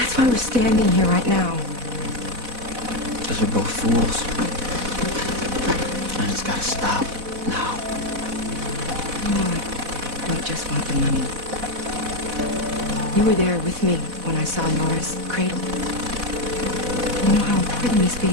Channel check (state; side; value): late; left; 4.1 ms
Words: why we're standing here right now. Because we're both fools. And it's gotta stop now. No, I just want the money. You were there with me when I saw Nora's cradle. You know how important this